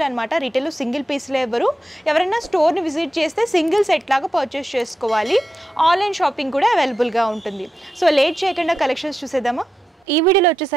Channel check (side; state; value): both; normal; correlation 0.88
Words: అనమాట. రిటైల్ సింగిల్ పీస్లో ఎవరైనా స్టోర్ని విజిట్ చేస్తే సింగిల్ సెట్ లాగా పర్చేస్ చేసుకోవాలి. ఆన్లైన్ షాపింగ్ కూడా అవైలబుల్గా ఉంటుంది. సో లేట్ చేయకుండా కలెక్షన్స్ చూసేద్దామా. ఈ వీడియోలో